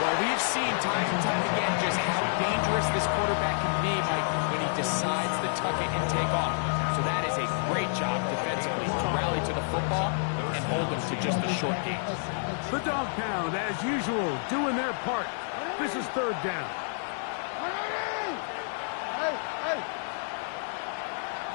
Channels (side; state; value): right; silent; 59 dB below the other